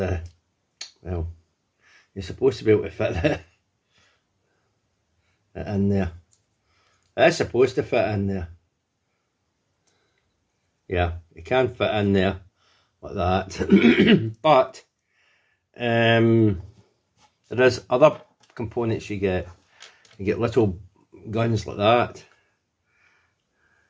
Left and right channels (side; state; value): both; identical; correlation 1.00